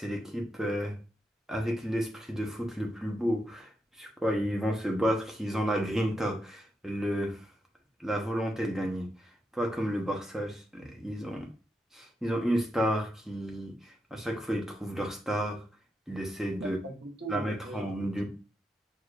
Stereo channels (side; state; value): both; normal; correlation 0.84